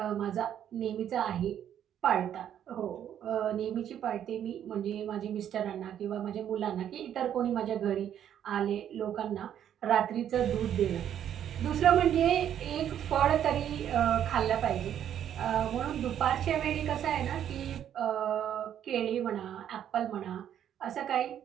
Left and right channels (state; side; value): quieter; left; 10.0 dB